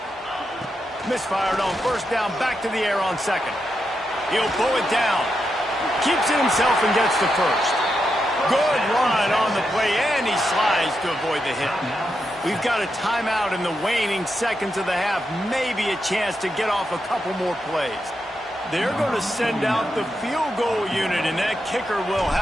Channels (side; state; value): both; normal; correlation 0.85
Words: misfired on first down, back to the air on second. He'll pull it down. Keeps it himself and gets to first. Good run on the play, and he slides to avoid the hit. We've got a timeout in the waning seconds of the half. Maybe a chance to get off a couple more plays. They're going to send out the field goal unit, and that kicker will